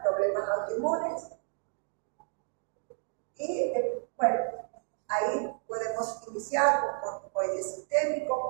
problemas autoinmunes y, bueno, ahí inicial con corticoide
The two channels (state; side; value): silent; left; 57 dB below the other